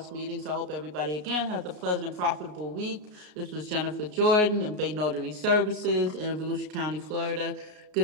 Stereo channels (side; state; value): left; late; 33 ms